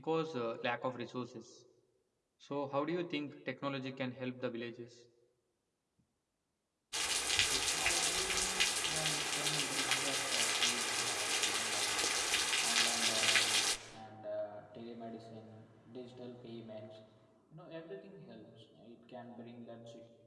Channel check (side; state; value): both; identical; correlation 1.00